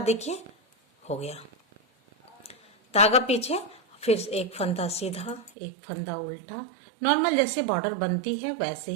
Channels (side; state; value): left; drops out; at 5.5 s